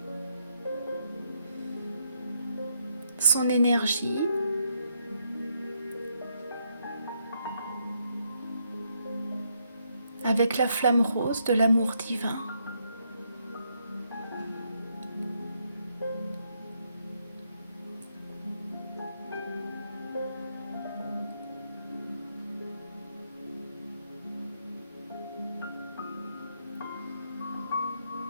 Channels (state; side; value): inverted; both; correlation -0.76